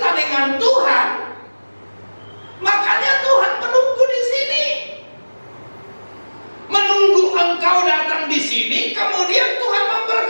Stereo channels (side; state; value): both; inverted; correlation -1.00